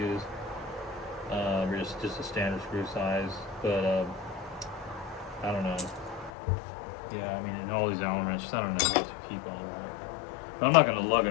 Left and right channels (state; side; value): drops out; right; at 6.3 s